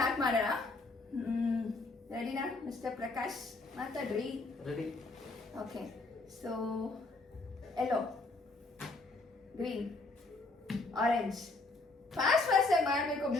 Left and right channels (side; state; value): right; quieter; 3.3 dB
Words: ಮಾಡೋಣ. ರೆಡಿನಾ ಮಿಸ್ಟರ್ ಪ್ರಕಾಶ್? ಮಾತಾಡ್ರಿ. Ready. Okay. So yellow, green, orange. Fast ಆಗಿ ಮಾಡಬೇಕು.